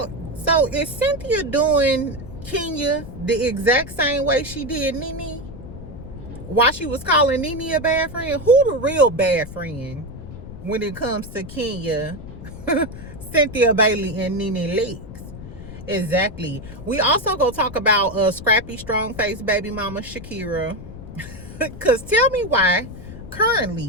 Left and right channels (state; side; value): noise; left; rumble, 13 dB below the sound